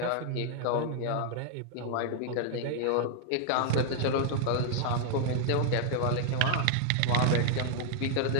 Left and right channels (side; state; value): both; different; correlation -0.01